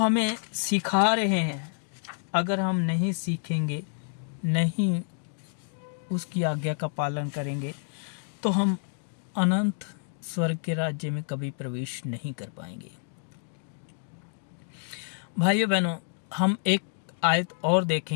सिखा रहे हैं, अगर हम नहीं सीखेंगे, नहीं उसकी आज्ञा का पालन करेंगे, तो हम अनंत स्वर्ग के राज्य में कभी प्रवेश नहीं कर पाएंगे। भाइयों बहनों, हम एक आयत और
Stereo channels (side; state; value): right; silent; 59 dB below the other